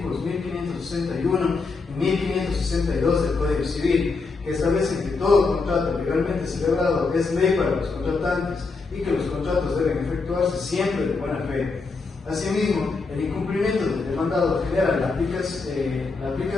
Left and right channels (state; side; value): quieter; right; 4.2 dB